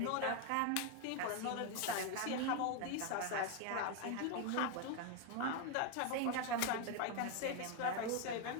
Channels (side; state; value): both; different; correlation 0.01